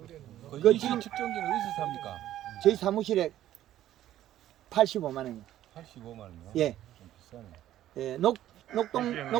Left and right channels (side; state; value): left; quieter; 12.8 dB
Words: 그 그 이시 지금- 측정기는 어디서 삽니까? 저희 사무실에 85만 원이요. 85만 원이요? 예. 좀 비싸네. 예,